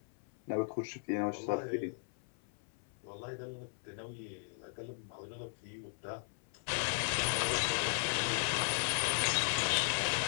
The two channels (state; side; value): silent; right; 53 dB below the other